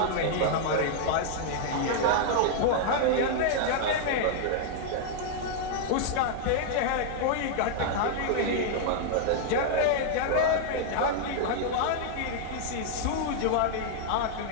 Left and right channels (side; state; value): both; different; correlation -0.01